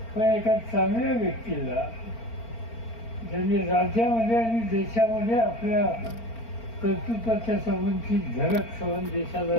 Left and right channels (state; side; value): late; right; 4.4 ms